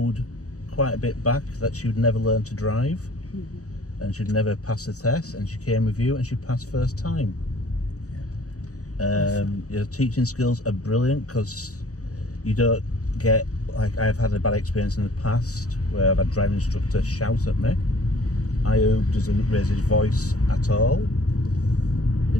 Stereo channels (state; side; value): late; right; 0.66 ms